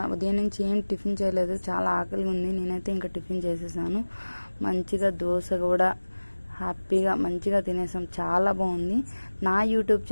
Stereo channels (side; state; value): both; inverted; correlation -1.00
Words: ఉదయం నుంచి ఏం టిఫిన్ చేయలేదు. చాలా ఆకలిగా ఉంది. నేనైతే ఇంకా టిఫిన్ చేసేసాను. మంచిగా దోశ కూడా హ్యాపీగా మంచిగా తినేసాం. చాలా బాగుంది. నా యూట్యూబ్